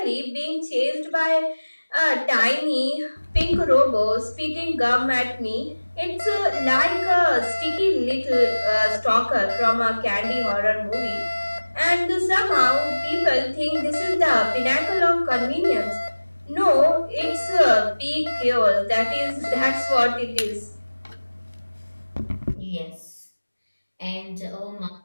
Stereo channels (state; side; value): inverted; both; correlation -1.00